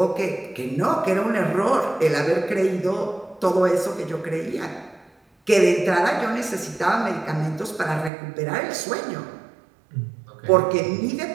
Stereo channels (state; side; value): drops out; left; at 8.1 s